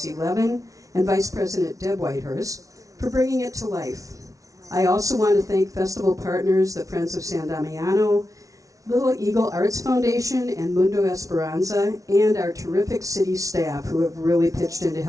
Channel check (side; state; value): left; late; 0.17 ms